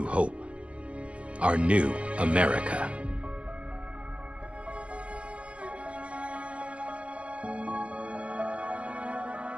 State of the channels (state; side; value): late; left; 0.061 ms